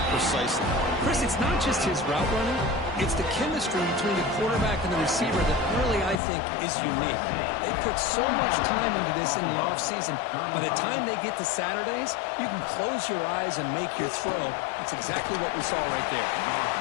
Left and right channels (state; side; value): drops out; right; at 6.2 s